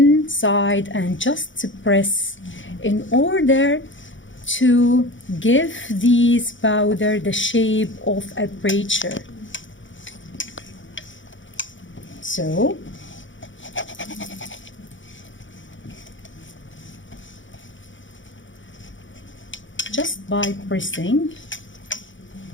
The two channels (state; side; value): late; right; 0.56 ms